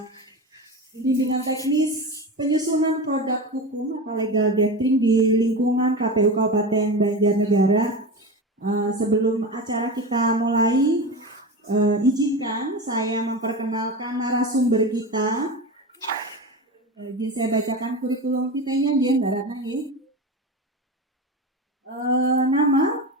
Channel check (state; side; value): normal; both; correlation 0.24